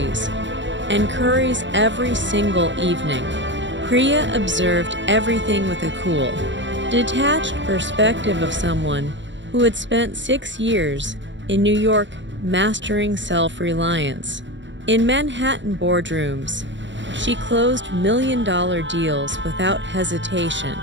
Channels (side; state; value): left; late; 0.54 ms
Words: and curries every single evening. Priya observed everything with a cool, detached perspective of someone who had spent 6 years in New York mastering self-reliance. In Manhattan boardrooms, she closed million-dollar deals without hesitation.